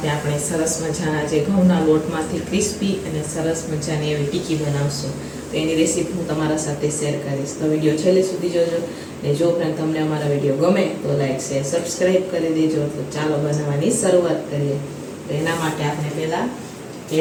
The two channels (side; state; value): both; identical; correlation 1.00